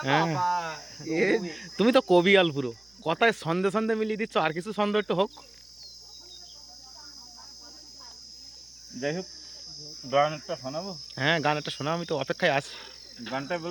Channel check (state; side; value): noise; right; hum, 30 dB below the sound